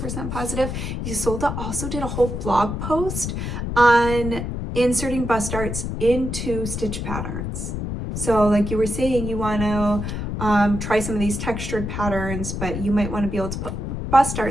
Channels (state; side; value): noise; left; rumble, 4 dB below the sound